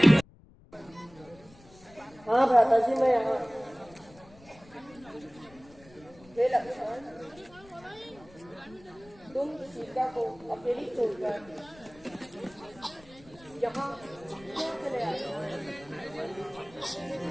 हाँ भ्राता जी, मैं यहाँ। हे लक्ष्मण, तुम सीता को अकेली छोड़कर यहाँ क्यों चले आए?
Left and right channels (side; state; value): left; noise; rumble, 24 dB below the sound